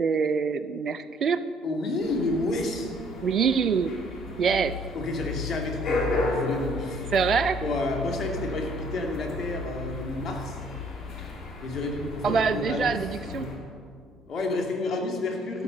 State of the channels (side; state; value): both; normal; correlation 0.61